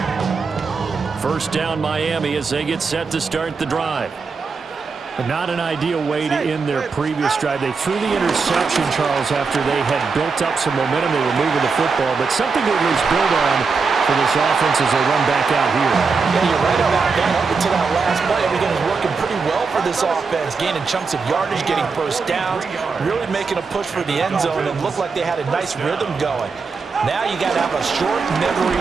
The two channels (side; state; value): left; quieter; 4.9 dB